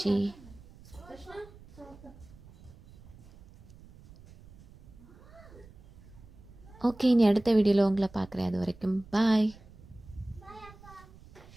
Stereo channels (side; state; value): right; noise; rumble, 21 dB below the sound